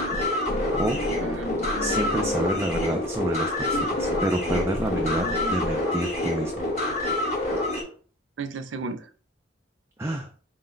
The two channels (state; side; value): normal; both; correlation 0.41